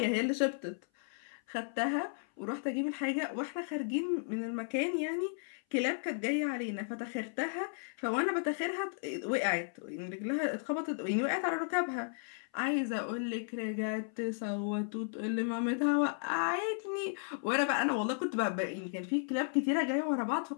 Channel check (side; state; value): right; silent; 55 dB below the other